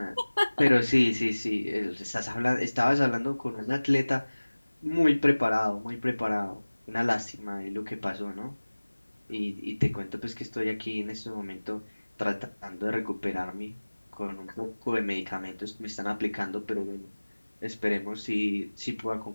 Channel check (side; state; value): both; inverted; correlation -1.00